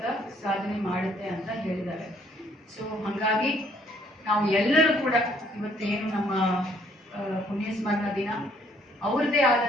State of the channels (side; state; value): both; normal; correlation 0.64